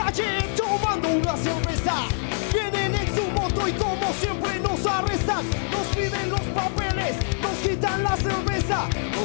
tomando una cerveza. Vienen en su moto y como siempre nos arrestan. Nos piden los papeles, nos quitan la cerveza,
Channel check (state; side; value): silent; right; digital silence